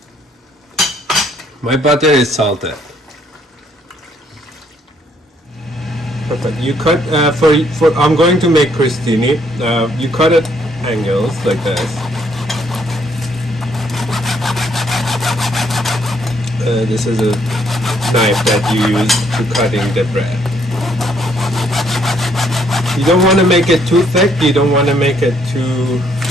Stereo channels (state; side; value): normal; both; correlation 0.68